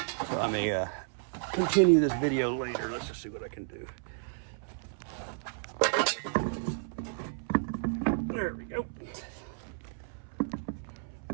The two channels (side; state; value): left; silent; 56 dB below the other